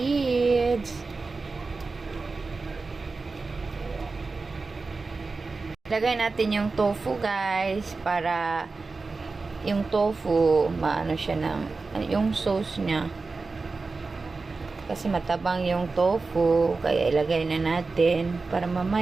Lagay natin yung tofu guys, para yung tofu maano siya ng yung sauce niya. Kasi matabang yung tofu, kaya ilagay na natin para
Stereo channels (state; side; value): quieter; left; 4.0 dB